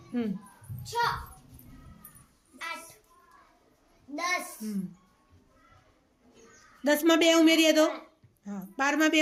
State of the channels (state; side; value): identical; both; correlation 1.00